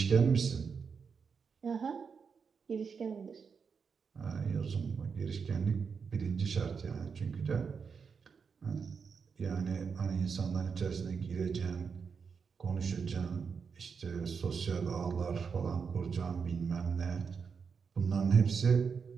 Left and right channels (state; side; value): quieter; left; 5.9 dB